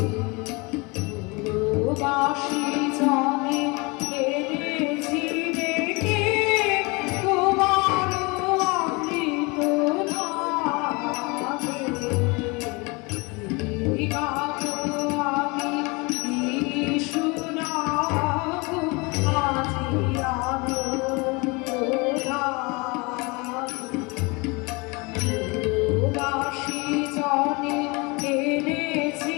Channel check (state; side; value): quieter; right; 27.4 dB